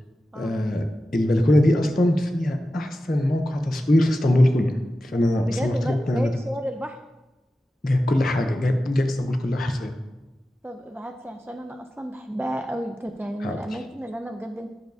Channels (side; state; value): both; normal; correlation 0.93